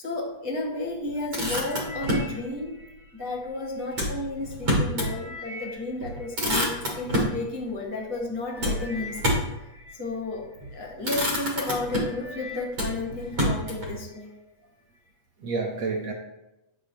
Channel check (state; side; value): late; left; 8.2 ms